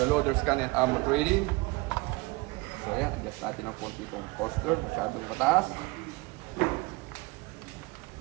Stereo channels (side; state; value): left; quieter; 24.5 dB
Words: Gun and Ammo Trading. So ayan, adjust natin ang konti itong coaster, masyadong mataas.